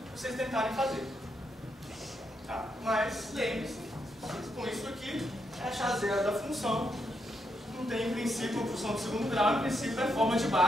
vocês tentarem fazer. Tá? Mas lembre-se, com isso aqui, é achar zero da função. Não tem, em princípio, uma função de segundo grau, em princípio é forma de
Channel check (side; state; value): both; normal; correlation 0.81